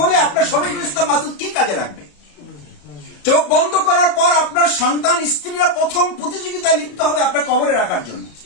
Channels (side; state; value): right; late; 34 ms